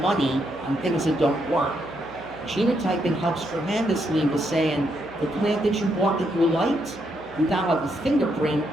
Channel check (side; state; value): right; noise; hum, 24 dB below the sound